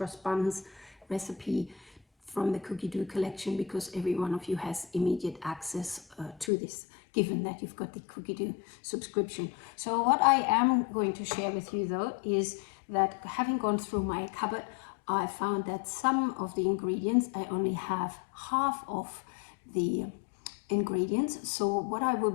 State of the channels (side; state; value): right; drops out; at 6.5 s